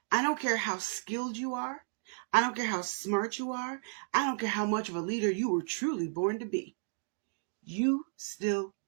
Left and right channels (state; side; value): silent; left; 56 dB below the other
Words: I don't care how skilled you are. I don't care how smart you are. I don't care how much of a leader you were truly born to be. You still